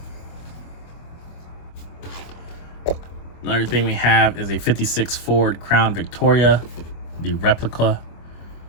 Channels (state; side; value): late; right; 24 ms